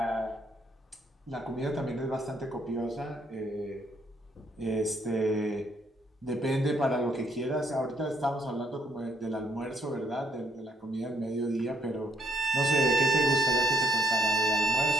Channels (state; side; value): normal; both; correlation 0.70